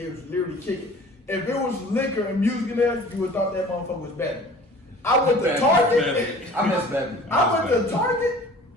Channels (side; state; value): both; normal; correlation 0.46